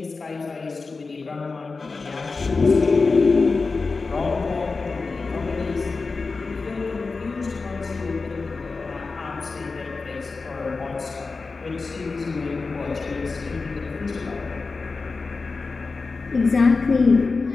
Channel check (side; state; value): right; quieter; 4.1 dB